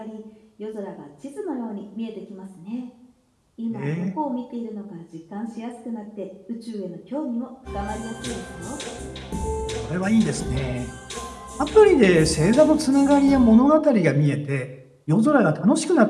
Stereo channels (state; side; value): identical; both; correlation 1.00